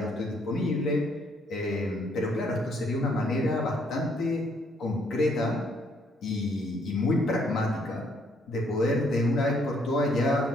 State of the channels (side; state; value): both; normal; correlation 0.68